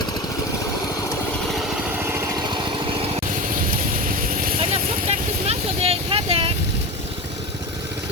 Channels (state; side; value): normal; both; correlation 0.26